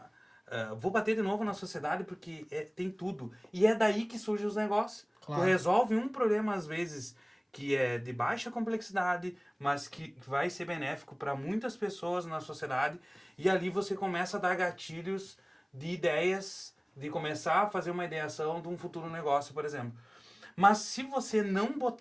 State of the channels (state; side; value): identical; both; correlation 1.00